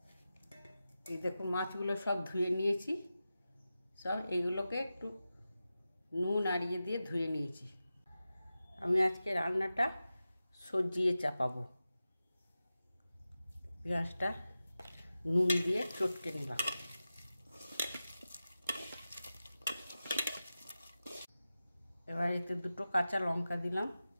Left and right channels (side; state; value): both; inverted; correlation -0.94